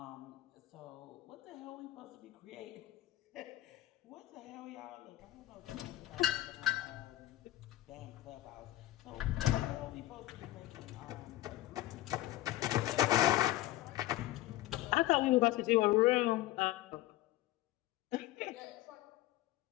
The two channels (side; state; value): right; quieter; 16.2 dB